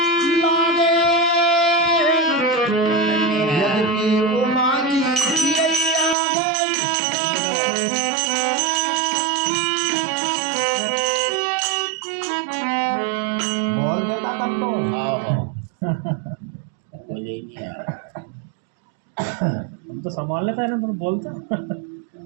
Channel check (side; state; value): left; drops out; at 6.2 s